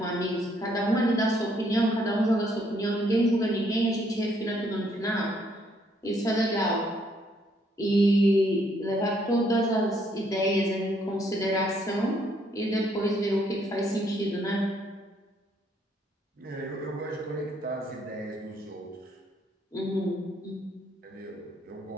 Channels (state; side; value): normal; both; correlation 0.69